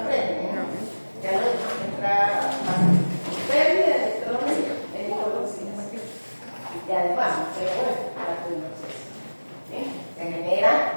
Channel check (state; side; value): inverted; both; correlation -1.00